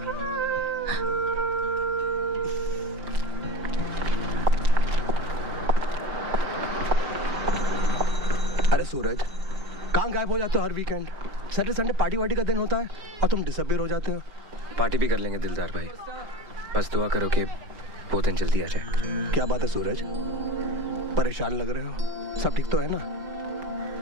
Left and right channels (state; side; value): late; left; 4.9 ms